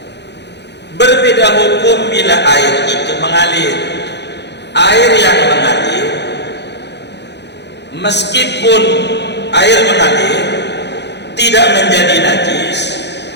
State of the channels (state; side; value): late; right; 0.50 ms